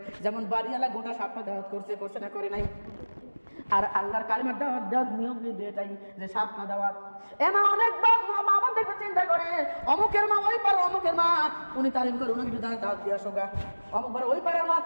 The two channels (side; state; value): both; inverted; correlation -1.00